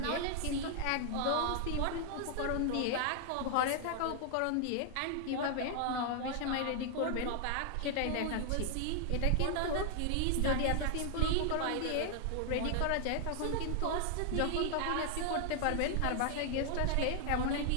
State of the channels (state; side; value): different; both; correlation 0.00